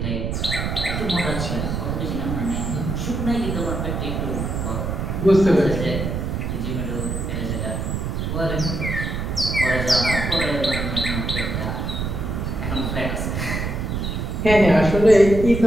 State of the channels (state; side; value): noise; right; rumble, 2 dB below the sound